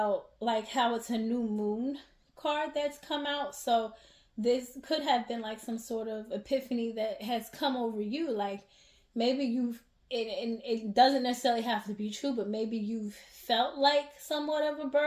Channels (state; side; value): identical; both; correlation 1.00